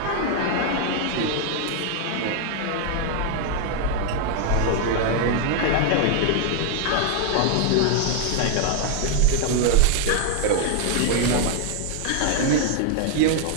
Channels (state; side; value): different; both; correlation 0.00